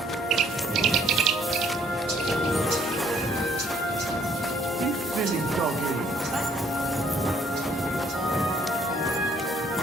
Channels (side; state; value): both; normal; correlation 0.64